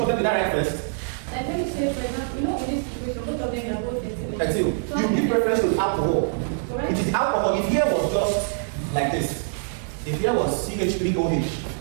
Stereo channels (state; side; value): silent; left; digital silence